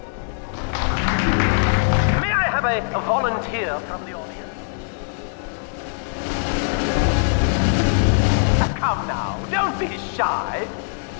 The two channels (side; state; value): right; silent; digital silence